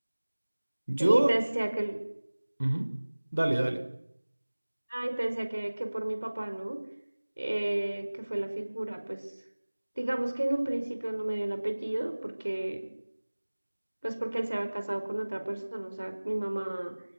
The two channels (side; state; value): both; inverted; correlation -1.00